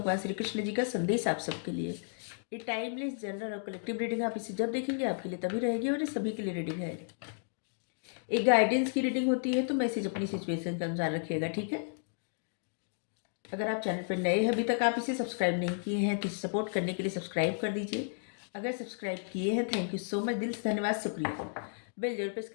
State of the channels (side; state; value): right; silent; digital silence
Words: श्री कृष्ण जी का संदेश आप सबके लिए। ये टाइमलेस जनरल और कलेक्टिव रीडिंग आप इसे जब देखेंगे आपके लिए तभी रहेगी और ये सभी के लिए रीडिंग है। एक गाइडेंस की रीडिंग होती है तो मैसेज अपनी सिचुएशन के अनुसार रखिएगा, ठीक है। अगर आप चैनल पर नए हैं, अभी तक आप इसे सब्सक्राइब नहीं किए हैं तो इसे सपोर्ट करने के लिए सब्सक्राइब कर दीजिए। अगर सब्सक्राइब किए हैं, थैंक यू सो मच, दिल से धन्यवाद, शुक्रिया। बेल जरूर प्रेस